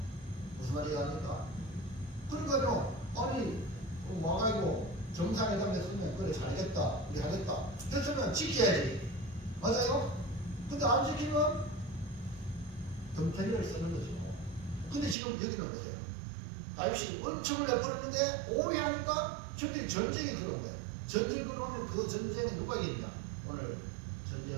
무슨 말이 합니까? 그러니까요, 아니 와가지고 정상회담에 쓰면 그래 잘했다 우리 하겠다 했으면 지켜야지. 맞아요? 근데 안 지키면 덤태리를 쓰는 거죠. 근데 지금 여기는 뭐예요? 다윗이 은총을 내버렸는데 오해하니까 저들이 전쟁이 들어온 거예요. 전쟁이 들어오면 그 전쟁에 누가 이기냐? 오늘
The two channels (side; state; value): left; drops out; at 15.2 s